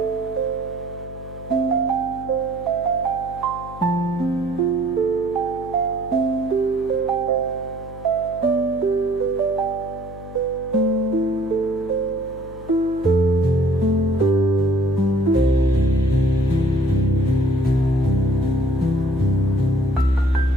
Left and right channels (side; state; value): left; noise; hum, 15 dB below the sound